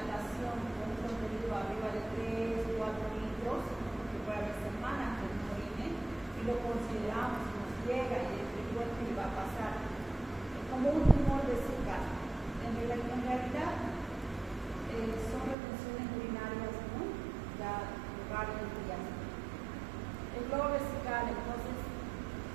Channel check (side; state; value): left; drops out; at 15.6 s